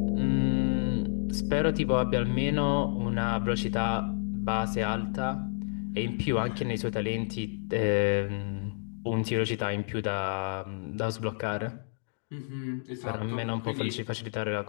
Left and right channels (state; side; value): silent; right; digital silence